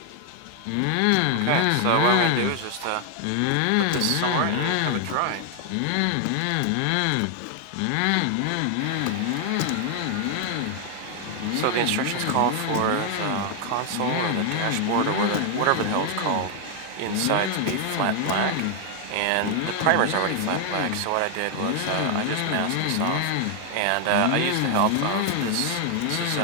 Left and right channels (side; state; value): both; different; correlation 0.00